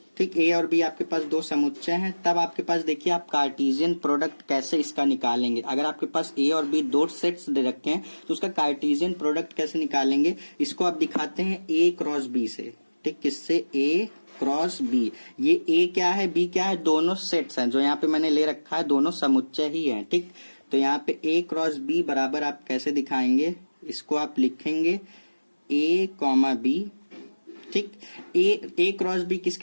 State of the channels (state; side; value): inverted; both; correlation -1.00